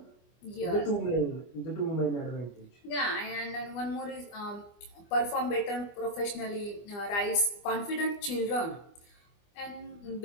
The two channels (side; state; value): right; late; 25 ms